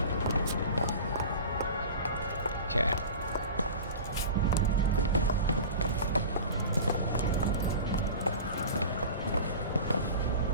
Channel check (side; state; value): both; inverted; correlation -0.33